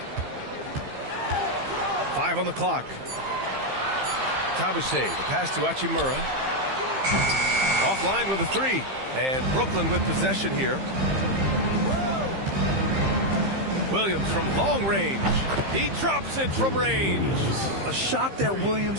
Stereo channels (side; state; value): left; late; 15 ms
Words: 5 on the clock. Tabuse, the pass to Hachimura. Offline with a 3. And Brooklyn with possession here. Williams from long range. He drops it from range. A shot that